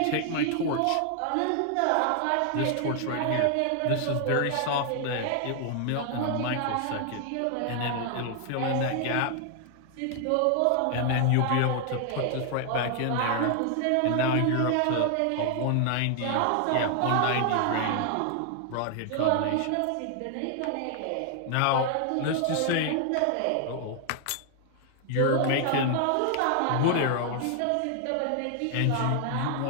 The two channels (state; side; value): different; both; correlation 0.00